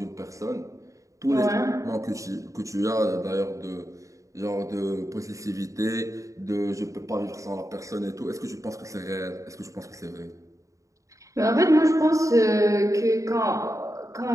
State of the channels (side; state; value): left; late; 0.16 ms